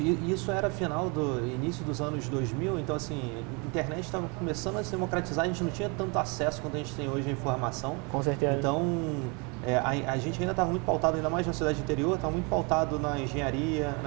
e isso era início dos anos 2000, então assim, a internet estava começando a se democratizar, a gente não tinha tanto acesso quanto a gente tem hoje à informação. Com certeza. Então, a gente ainda estava muito pautado, ainda mais na cidade interior, estava muito pautado na engenharia,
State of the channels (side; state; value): left; quieter; 31.4 dB